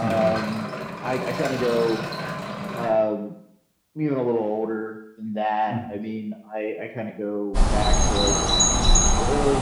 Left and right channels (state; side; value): identical; both; correlation 1.00